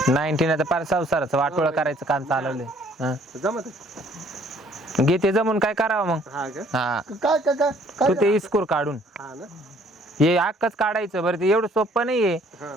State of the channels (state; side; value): normal; both; correlation 0.60